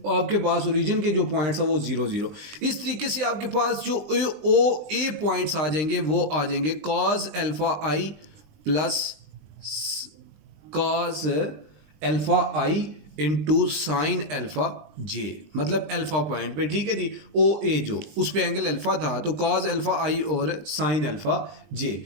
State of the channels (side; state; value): left; late; 20 ms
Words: आपके पास ओरिजिन के जो पॉइंट्स है वो 0 0। इस तरीके से आपके पास जो ओ ए पॉइंट्स आ जाएंगे वो आ जाएंगे cause alpha I plus cos alpha I into sine alpha जे, मतलब अल्फा पॉइंट पे। ठीक है जी, ओ ए जो उस पे एंगल अल्फा था तो कॉज अल्फा आई और साइन अल्फा जे।